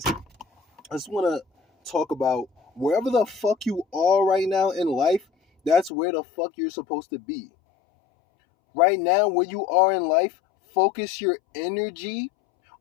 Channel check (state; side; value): drops out; right; at 5.9 s